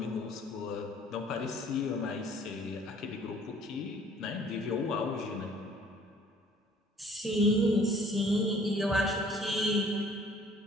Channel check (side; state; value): both; normal; correlation 0.56